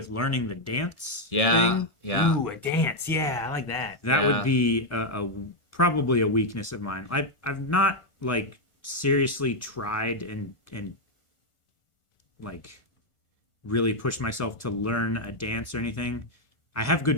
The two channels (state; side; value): late; right; 1.4 ms